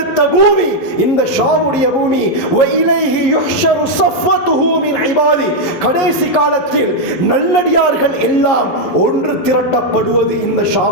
பூமி இந்த ஷாமுடைய பூமி. வஇலைஹி யுஹ்ஷரு ஸஃவத்துஹு மின் இபாதி, கடைசி காலத்தில் நல்லடியார்கள் எல்லாம் ஒன்று திரட்டப்படுவது இந்த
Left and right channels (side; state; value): right; late; 11 ms